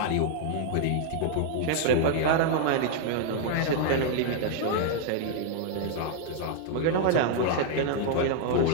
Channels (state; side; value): different; both; correlation 0.00